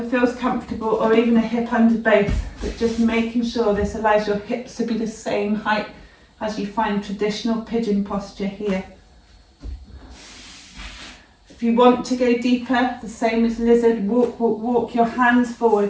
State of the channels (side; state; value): both; identical; correlation 1.00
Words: feels comfortable, or even a hip under both, but just making sure this allows your hips to be the same height as you find traditional pigeon posture here. If you want to go deeper, the same as lizard, walk your hands forward,